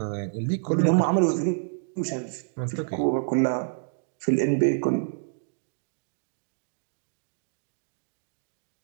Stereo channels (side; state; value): left; silent; digital silence